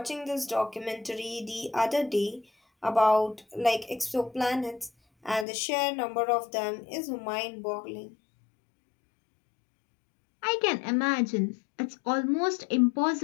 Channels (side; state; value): right; drops out; at 5.5 s